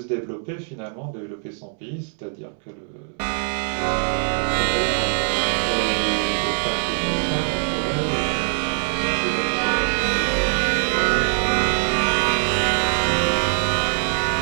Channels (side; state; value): left; silent; 64 dB below the other